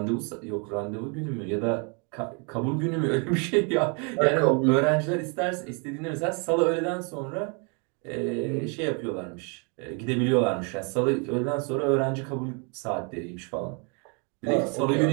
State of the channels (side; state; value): left; quieter; 35.7 dB